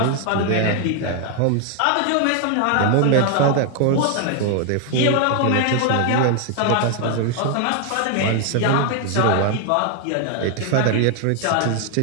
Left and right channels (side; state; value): both; different; correlation 0.00